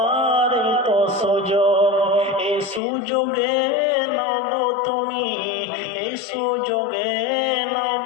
এই তো সুযোগ। এই সুযোগে নাও গো তুমি, এই সুযোগে নাও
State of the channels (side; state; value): right; drops out; at 2.8 s